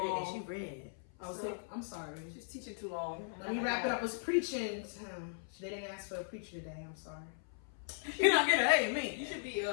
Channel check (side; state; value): right; silent; 53 dB below the other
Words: She read. I'm sorry. She's teaching too long. Let me wrap it up with preaching. They didn't ask for a preacher today. I'm sorry. You're not gonna hate me. You should be